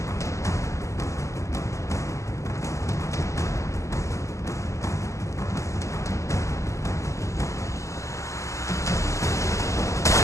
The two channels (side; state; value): right; late; 0.15 ms